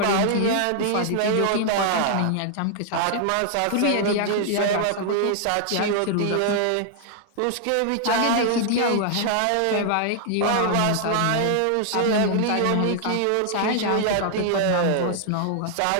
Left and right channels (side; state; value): both; different; correlation -0.01